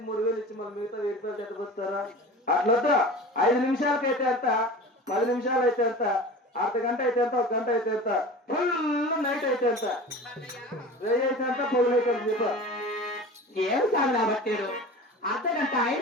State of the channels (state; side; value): normal; both; correlation 0.36